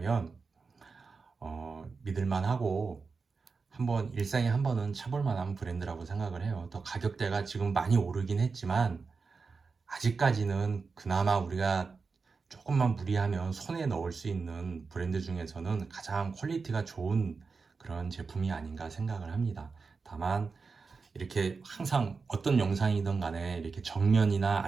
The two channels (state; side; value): quieter; left; 4.7 dB